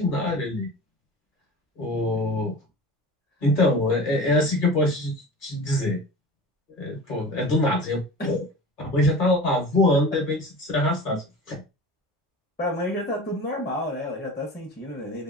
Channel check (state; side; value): normal; both; correlation 0.35